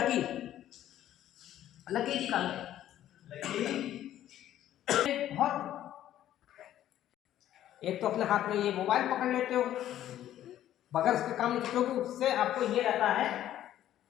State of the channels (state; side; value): quieter; right; 12.2 dB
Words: जी कहाँ है? बहुत एक तो अपने हाथ में ये मोबाइल पकड़ लेते हो बगैर उसके काम नहीं, क्योंकि उससे आपको ये रहता है